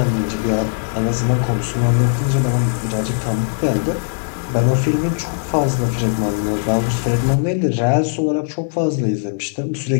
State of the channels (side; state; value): right; silent; 57 dB below the other